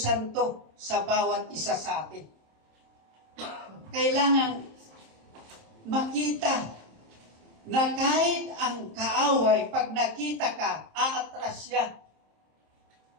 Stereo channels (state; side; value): late; left; 27 ms